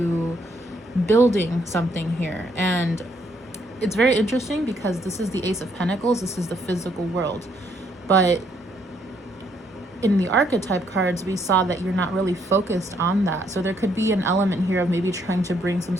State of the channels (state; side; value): normal; both; correlation 0.71